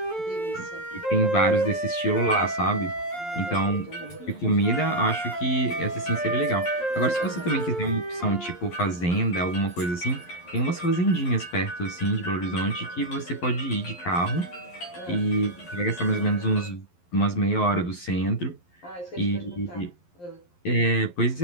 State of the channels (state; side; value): late; right; 11 ms